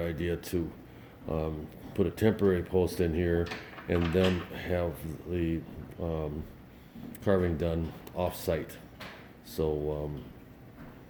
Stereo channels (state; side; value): identical; both; correlation 1.00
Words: idea to put a temporary post in here and then have the carving done off-site, so